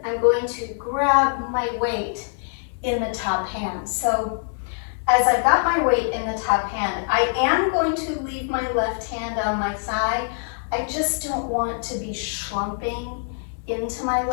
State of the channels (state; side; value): silent; right; digital silence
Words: I'm going to grab my weight in the top hand. So as I've got my weight in the top hand, I am going to leave my left hand on my thigh. I just don't want to be slumping into my